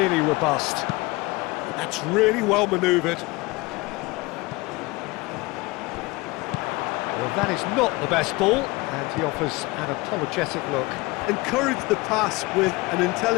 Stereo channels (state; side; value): quieter; right; 23.1 dB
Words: robust. That's really well manoeuvred. Well, that is not the best ball, and he offers an apologetic look. Encouraged the pass with an